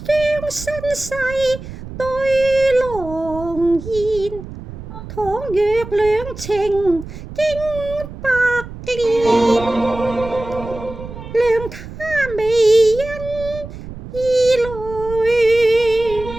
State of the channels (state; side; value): noise; right; rumble, 12 dB below the sound